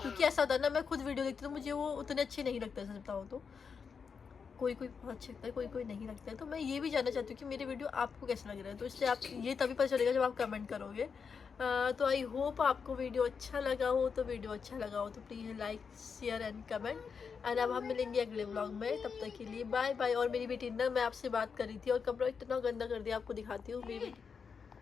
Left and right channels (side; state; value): right; quieter; 5.9 dB